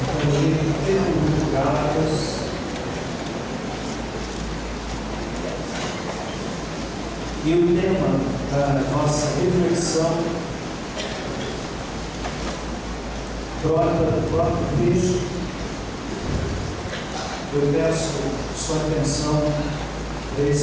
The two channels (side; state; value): both; identical; correlation 1.00